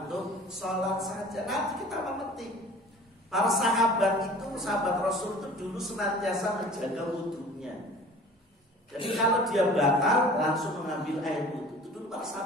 sholat saja. Nanti kita memetik. Para sahabat itu, sahabat Rasul itu dulu senantiasa menjaga wudunya. Jadi kalau dia batal langsung mengambil air wudu. Itu dulu para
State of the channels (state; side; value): normal; both; correlation 0.45